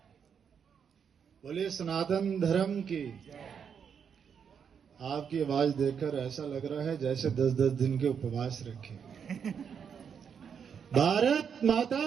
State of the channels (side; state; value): left; quieter; 7.2 dB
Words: बोलिए सनातन धर्म की। आपकी आवाज देखकर ऐसा लग रहा है जैसे 10-10 दिन के उपवास रखे। भारत